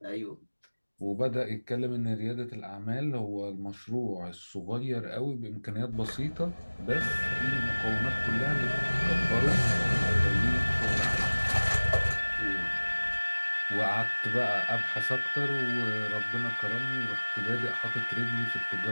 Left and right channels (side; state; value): both; inverted; correlation -1.00